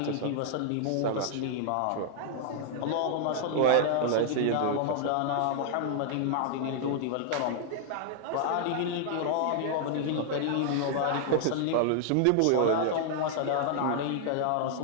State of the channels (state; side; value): different; both; correlation -0.01